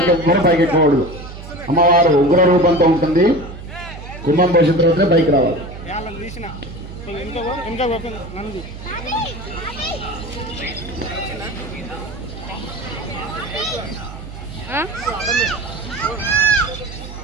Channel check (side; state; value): right; noise; hum, 13 dB below the sound